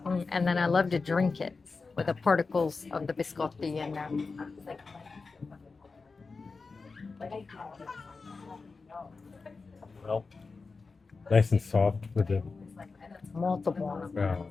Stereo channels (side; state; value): right; quieter; 4.3 dB